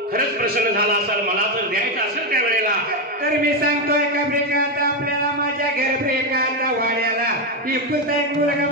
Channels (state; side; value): normal; both; correlation 0.08